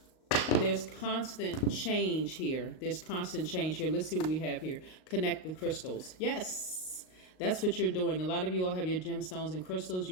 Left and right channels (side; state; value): right; late; 38 ms